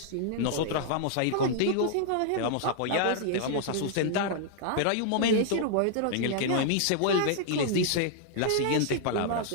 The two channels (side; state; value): both; different; correlation -0.01